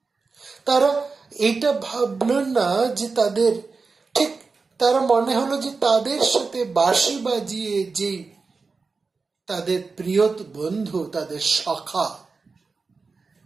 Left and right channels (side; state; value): left; quieter; 4.4 dB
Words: তারা এটা ভাবলেন না যে তাদের ঠিক, তারা মনে হলো যে তাদের সাথে বাঁশি বাজিয়ে যে তাদের প্রিয় বন্ধু, তাদের সখা